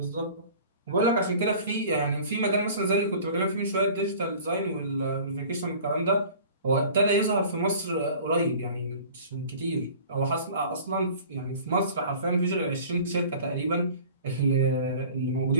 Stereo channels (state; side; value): inverted; both; correlation -0.45